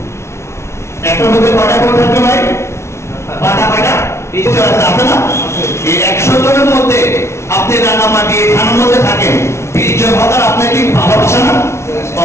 একটা মধ্যে কটা ভোট থাকবে ভাই? পাটা নিশ্চয় আছে না? এই 100 জনের মধ্যে আপনি রাঙামাটি থানার মধ্যে থাকেন, 20 জন হকার আপনাকে ভালোবাসে না?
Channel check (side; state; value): right; late; 0.13 ms